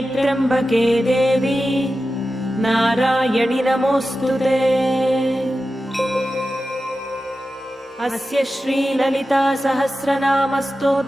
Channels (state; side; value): normal; both; correlation 0.92